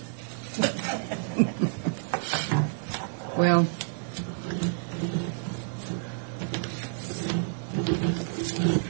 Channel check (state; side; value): silent; left; digital silence